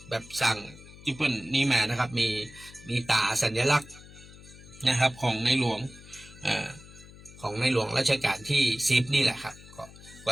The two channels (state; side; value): noise; left; hum, 19 dB below the sound